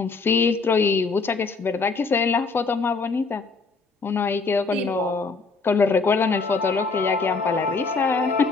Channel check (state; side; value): quieter; right; 4.3 dB